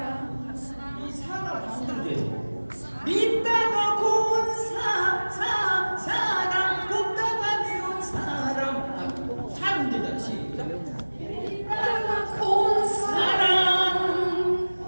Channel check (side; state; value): both; inverted; correlation -1.00